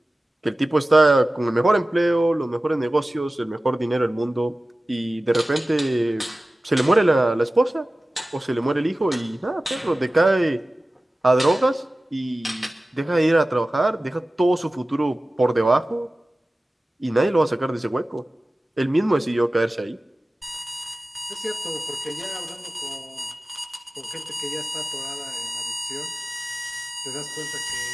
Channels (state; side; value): normal; both; correlation 0.96